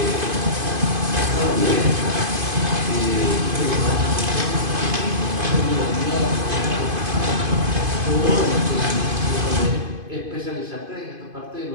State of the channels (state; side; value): late; left; 2.5 ms